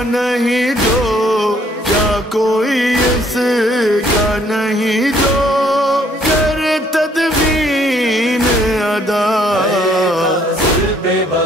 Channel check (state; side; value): normal; both; correlation 0.64